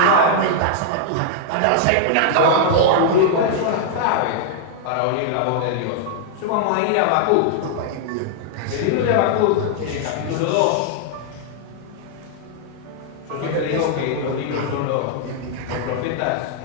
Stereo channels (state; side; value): different; both; correlation -0.01